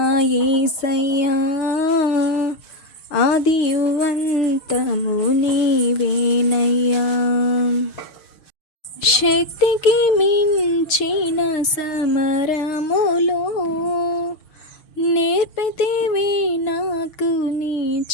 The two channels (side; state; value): right; late; 6.5 ms